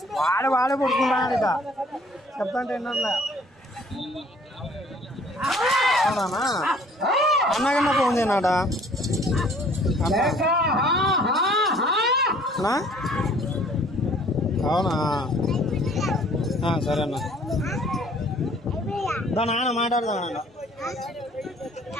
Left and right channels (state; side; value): normal; both; correlation 0.56